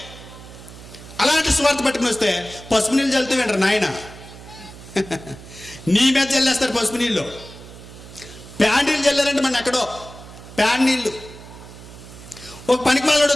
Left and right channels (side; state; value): right; noise; hum, 17 dB below the sound